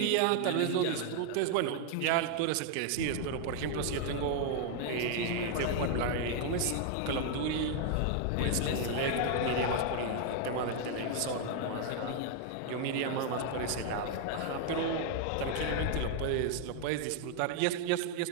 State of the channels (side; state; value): both; different; correlation 0.00